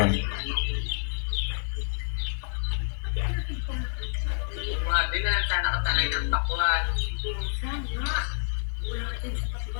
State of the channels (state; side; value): silent; right; digital silence